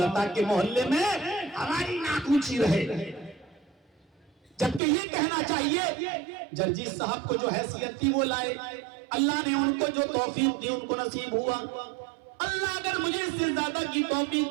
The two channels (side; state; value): left; drops out; at 4.8 s